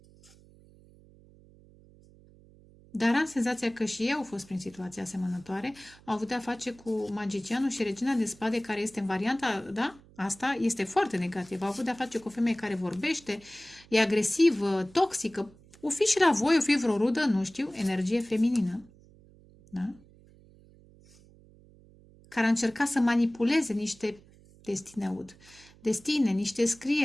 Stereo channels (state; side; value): noise; right; hum, 25 dB below the sound